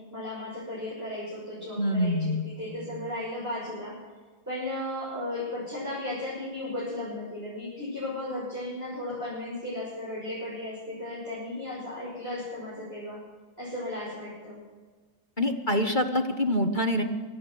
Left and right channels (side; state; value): right; late; 2.3 ms